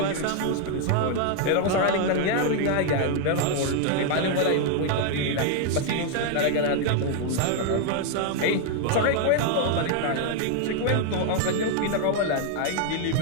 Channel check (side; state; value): both; different; correlation 0.00